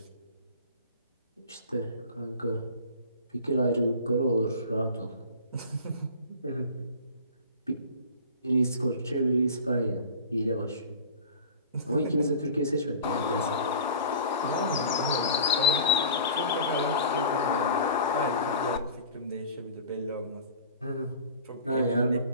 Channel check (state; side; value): inverted; both; correlation -0.40